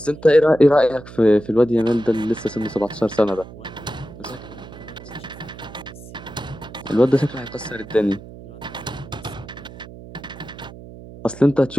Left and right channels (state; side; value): noise; right; hum, 16 dB below the sound